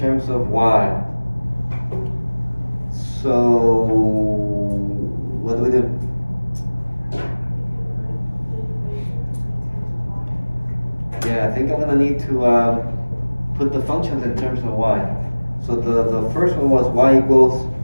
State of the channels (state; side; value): inverted; both; correlation -1.00